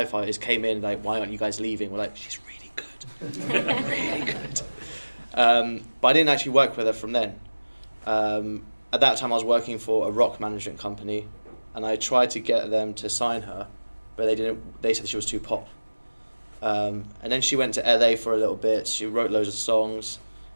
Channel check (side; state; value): both; inverted; correlation -1.00